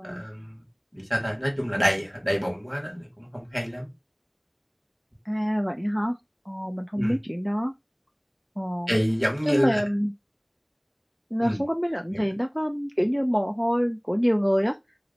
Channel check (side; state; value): both; identical; correlation 1.00